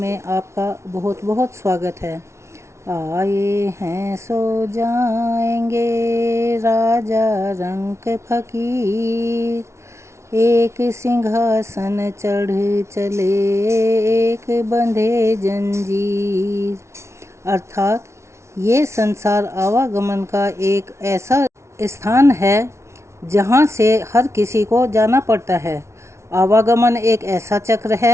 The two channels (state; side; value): late; left; 0.13 ms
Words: आपका बहुत बहुत स्वागत है। आए हैं सो जाएंगे राजा रंक फकीर, एक सिंहासन चढ़ चले एक बंधे जंजीर। अर्थात ये संसार आवागमन का एक ऐसा स्थान है जहाँ से हर किसी को जाना पड़ता है। आवागमन एक ऐसा चक्र